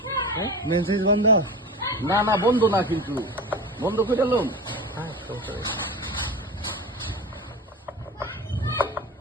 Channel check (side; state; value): both; normal; correlation 0.29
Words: মেসেজ বন্ধ না না বন্ধ না, কিন্তু বন্ধ করে এলাম।